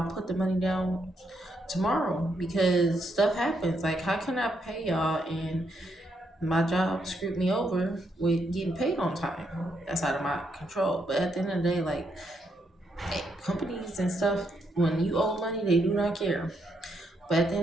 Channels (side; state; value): both; normal; correlation 0.77